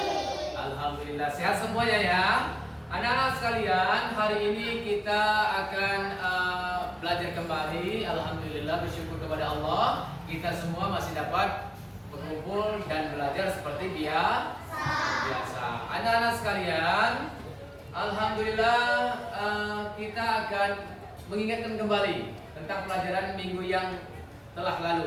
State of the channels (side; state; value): both; identical; correlation 1.00